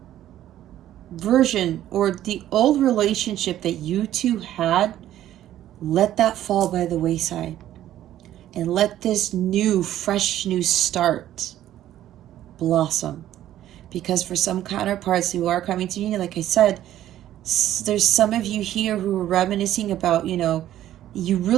version or the old relationship that you two had, let that fall by the wayside. And let this new, fresh new start blossom. Because for some counterparts who are coming to union, like I said, there's some of you here who are reminiscing about, you know, you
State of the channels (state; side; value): quieter; left; 12.6 dB